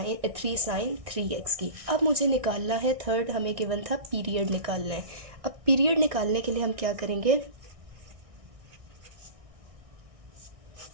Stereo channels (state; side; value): late; left; 1.6 ms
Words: sine 3x की। अब मुझे निकालना है, थर्ड हमें गिवन था पीरियड निकालना है। अब पीरियड निकालने के लिए हम क्या करेंगे,